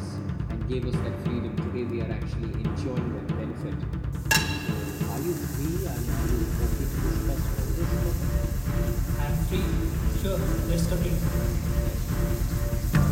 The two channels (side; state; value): both; identical; correlation 1.00